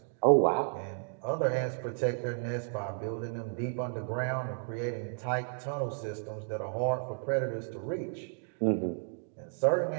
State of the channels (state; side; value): silent; left; digital silence